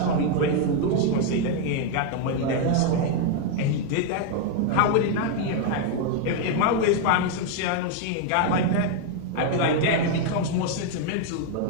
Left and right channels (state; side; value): different; both; correlation 0.00